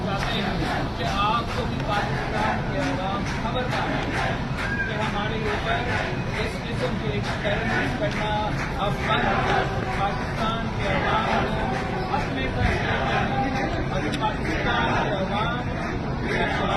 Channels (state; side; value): identical; both; correlation 1.00